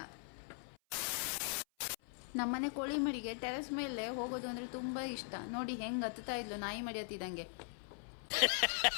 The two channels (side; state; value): right; silent; 51 dB below the other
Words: ನಮ್ಮನೆ ಕೋಳಿ ಮರಿಗೆ ಟೆರೆಸ್ ಮೇಲೆ ಹೋಗೋದು ಅಂದರೆ ತುಂಬ ಇಷ್ಟ. ನೋಡಿ ಹೆಂಗೆ ಹತ್ತುತ್ತಾ ಇದ್ಲು ನಾಯಿ ಮರಿ ಹತ್ತಿದಂಗೆ.